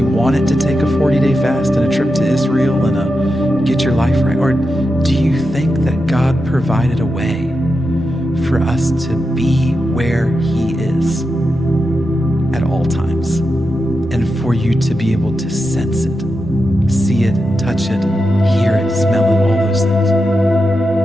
want it to take a 40-day fast and a trip to Israel and a get your life right? Or do you think that God provided a way for us to be where he is at all times, and for you to be able to sense it, see it, touch it, hear it, smell it, all those things?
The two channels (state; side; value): normal; both; correlation 0.88